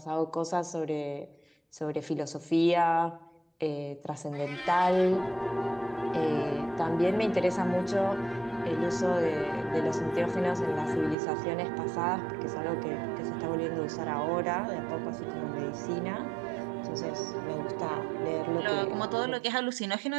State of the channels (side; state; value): left; drops out; at 11.2 s